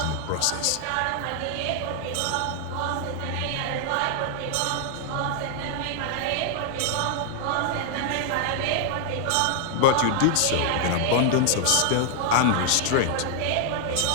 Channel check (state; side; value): different; both; correlation 0.00